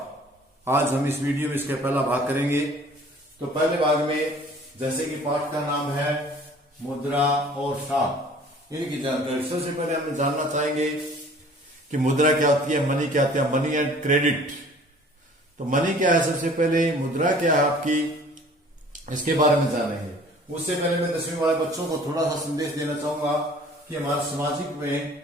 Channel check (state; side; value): normal; both; correlation 0.50